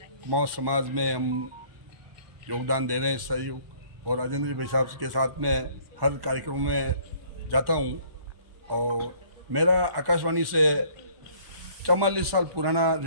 कुमाऊं समाज में हम योगदान दे रहे हैं, सहयोग। और राजेंद्र भाई साहब के साथ में हर कार्यक्रम में जाता हूँ। और मेरा आकाशवाणी से 44 साल पुराना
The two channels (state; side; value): late; left; 1.1 ms